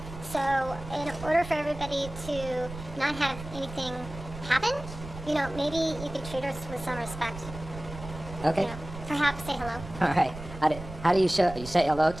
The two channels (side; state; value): right; noise; rumble, 12 dB below the sound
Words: So, in order for everybody to not have anything happen, you know, maybe you could treat her with some respect. Okay. You know, perhaps say hello. All right. How do you show? You say hello